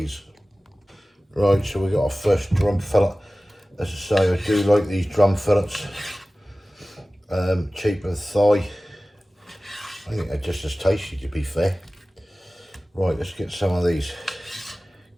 Right, so we got our first drum fillet. As I say, I do like these drum fillets. Cheaper than thigh. I think they're just as tasty, to be fair. Right, let's get some of these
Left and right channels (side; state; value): both; normal; correlation 0.97